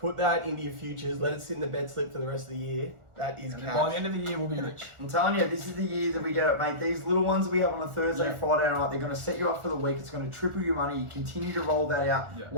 that into your futures. Let it sit in the bet slip for the rest of the year. That is By the cash. end of the year, we'll be rich. I'm telling you, this is the year that we get it, mate. These little ones we have on a Thursday, Yeah. Friday night, they're going to set you up for the week. It's going to triple your money. You continue to roll that out. Yeah.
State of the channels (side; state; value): left; late; 1.4 ms